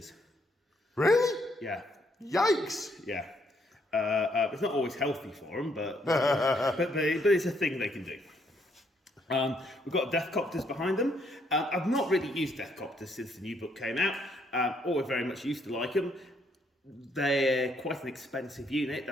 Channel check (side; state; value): both; normal; correlation 0.71